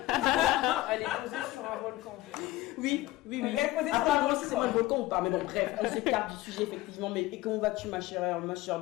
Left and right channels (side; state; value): right; quieter; 18.0 dB